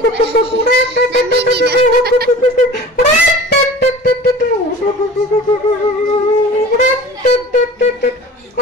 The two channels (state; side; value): normal; both; correlation 0.41